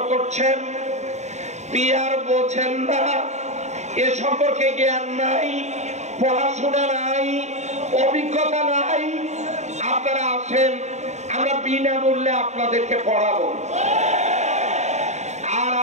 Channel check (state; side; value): late; left; 0.33 ms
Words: করছেন, পিয়ার বোঝেন না, এ সম্পর্কে জ্ঞান নাই, পড়াশোনা নাই, অভিজ্ঞতা নাই, আপনারা আসেন, আমরা বিনামূল্যে আপনাদেরকে পড়াবো। আর